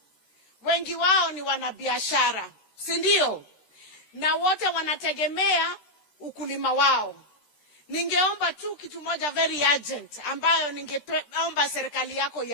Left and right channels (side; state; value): right; late; 13 ms